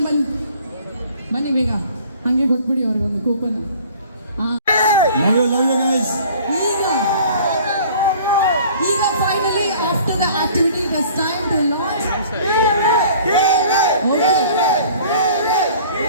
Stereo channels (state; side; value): inverted; both; correlation -0.50